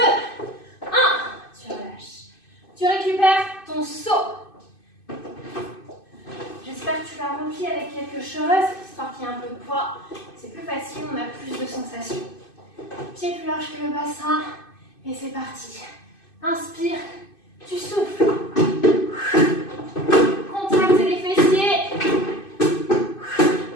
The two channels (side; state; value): right; late; 2.5 ms